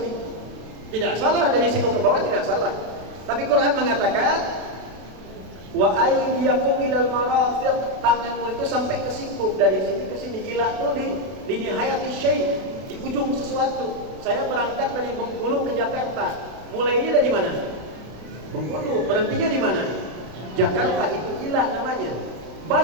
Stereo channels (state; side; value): late; left; 32 ms